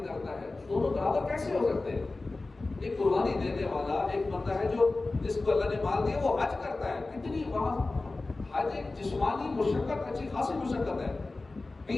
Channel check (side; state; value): right; quieter; 3.3 dB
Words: کرتا ہے، دونوں برابر کیسے ہو سکتے ہیں؟ ایک قربانی دینے والا ایک بندہ ہے جو جس کو اللہ نے مال دیا وہ حج کرتا ہے، کتنی وہاں حج ایک جسمانی مشقت، اچھی خاصی مشقت ہے،